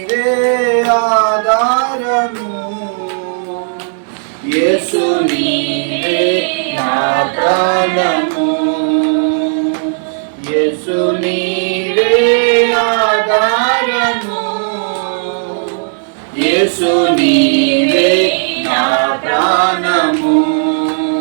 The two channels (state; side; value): silent; left; digital silence